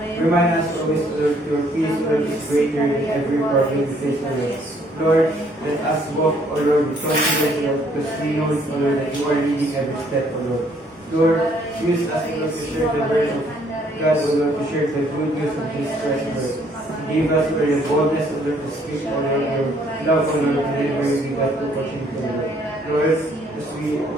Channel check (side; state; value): both; normal; correlation 0.65